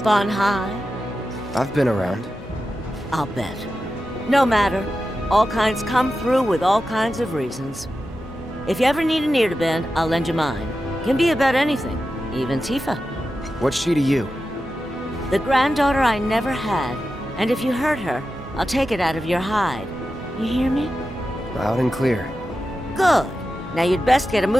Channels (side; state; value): both; normal; correlation 0.91